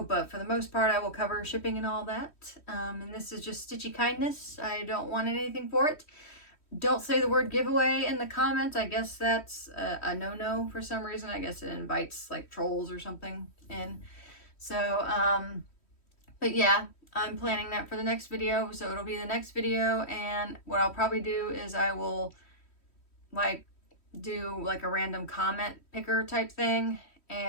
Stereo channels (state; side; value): late; right; 3.1 ms